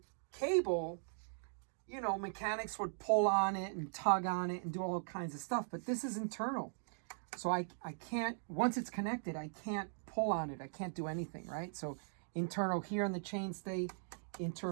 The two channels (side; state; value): left; silent; digital silence